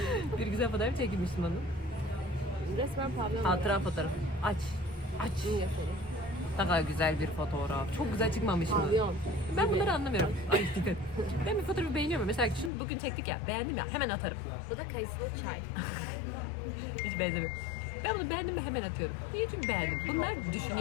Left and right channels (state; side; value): drops out; right; at 12.7 s